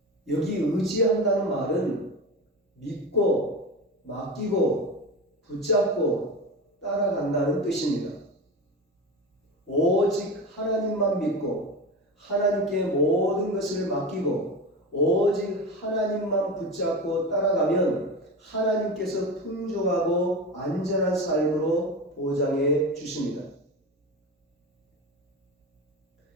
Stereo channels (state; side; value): normal; both; correlation 0.25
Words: 여기 의지한다는 말은 믿고 맡기고 붙잡고 따라간다는 뜻입니다. 오직 하나님만 믿고 하나님께 모든 것을 맡기고 오직 하나님만 붙잡고 따라가면 하나님께서 풍족하고 안전한 삶으로 보장해 주십니다.